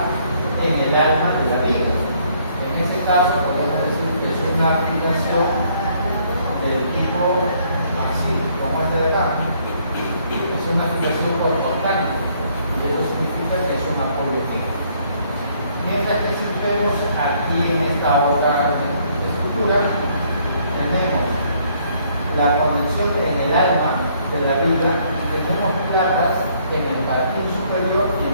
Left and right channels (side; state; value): both; inverted; correlation -0.66